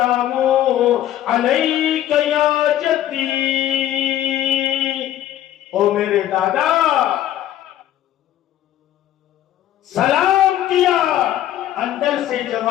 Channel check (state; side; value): quieter; right; 12.4 dB